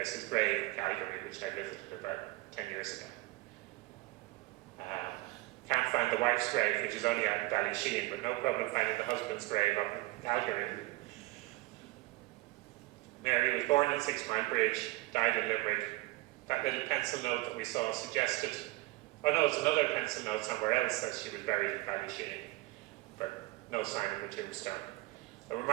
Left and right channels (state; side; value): quieter; left; 20.6 dB